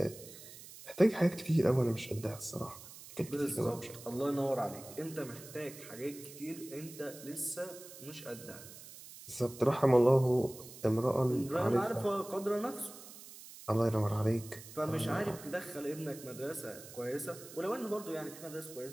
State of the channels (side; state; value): right; noise; hiss, 16 dB below the sound